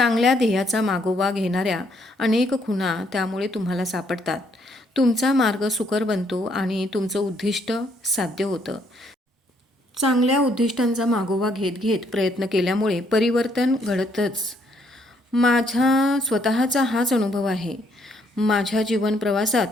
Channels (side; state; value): both; normal; correlation 0.69